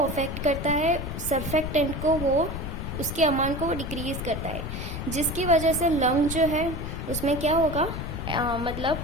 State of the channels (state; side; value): noise; left; rumble, 6 dB below the sound